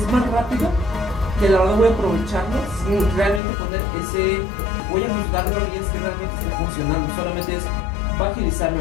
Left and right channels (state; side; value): drops out; right; at 3.4 s